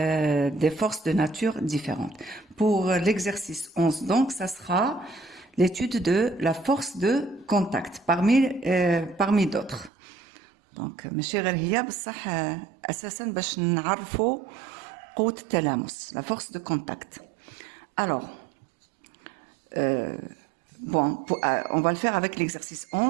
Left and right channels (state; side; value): drops out; left; at 9.9 s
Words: forces de nature différentes. Pour l'exercice 11 donc ça sera l'étude de la force de contact parmi d'autres. Donc ماشي غير هي بصح اساسا باش نعرفوا قوة التلامس la force de contact. Alors bon, on va le faire avec l'exercice